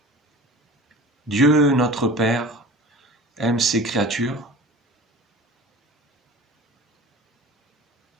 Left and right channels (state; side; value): normal; both; correlation 0.39